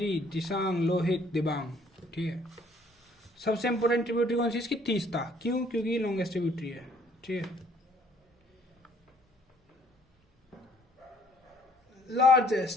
दिसांग, लोहित, दिबांग, ठीक है। सबसे इंपोर्टेंट ट्रिब्यूटरी कौन सी? इसकी तीस्ता। क्यों? क्योंकि लॉन्गेस्ट ट्रिब्यूटरी है, ठीक है।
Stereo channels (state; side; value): normal; both; correlation 0.61